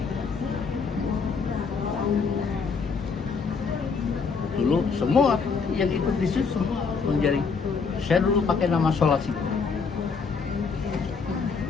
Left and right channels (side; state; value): right; quieter; 5.3 dB